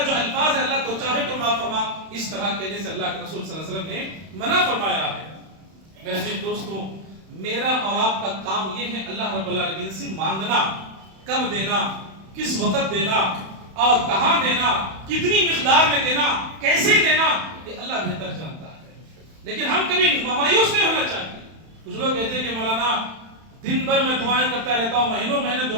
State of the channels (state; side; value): late; left; 31 ms